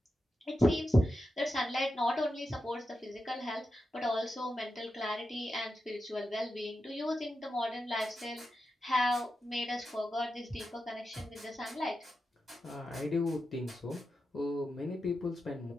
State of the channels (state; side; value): normal; both; correlation 0.90